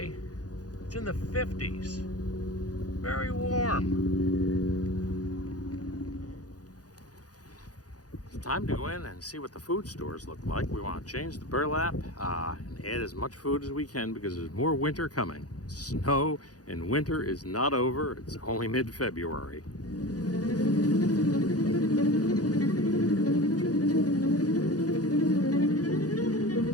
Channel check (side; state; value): right; late; 0.68 ms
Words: It's in the 50s. Very warm. It's time to go in and see what the food stores look like. We want to change the burlap and add as much food as we can because there's more winter coming. Snow and winter is not over. It's only mid-February.